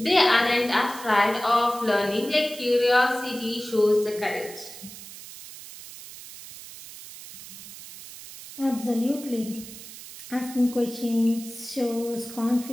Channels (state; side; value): noise; right; hiss, 15 dB below the sound